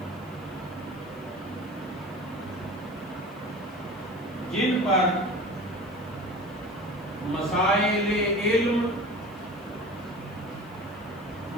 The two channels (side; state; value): right; noise; hiss, 29 dB below the sound